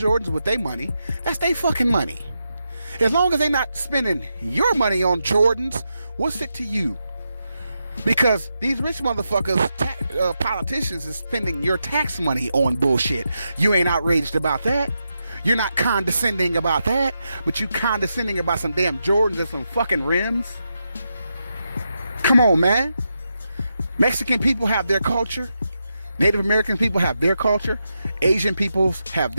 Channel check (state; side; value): inverted; both; correlation -0.86